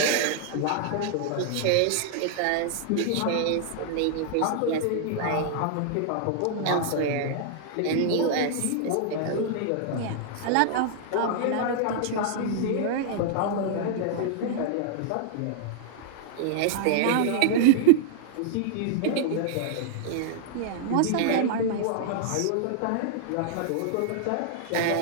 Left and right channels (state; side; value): different; both; correlation -0.01